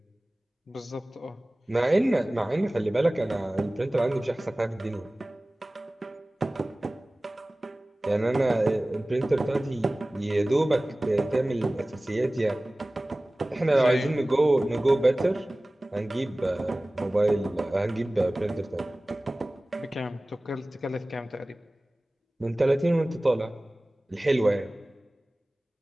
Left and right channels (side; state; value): both; normal; correlation 0.98